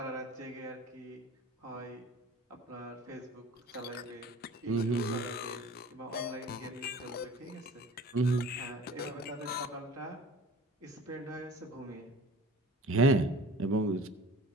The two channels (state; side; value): normal; both; correlation 0.43